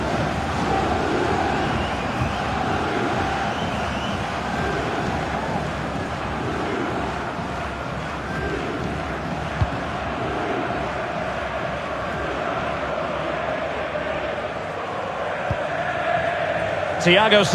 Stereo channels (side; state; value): both; identical; correlation 1.00